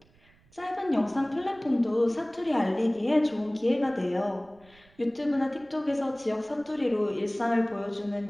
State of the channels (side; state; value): right; noise; rumble, 30 dB below the sound